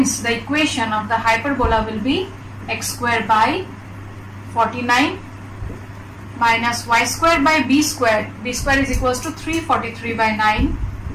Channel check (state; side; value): identical; both; correlation 1.00